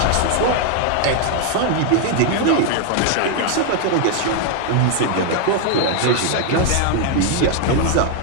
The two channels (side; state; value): both; different; correlation 0.00